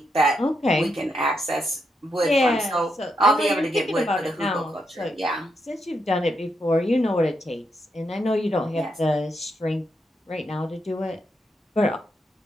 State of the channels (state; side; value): normal; both; correlation 0.81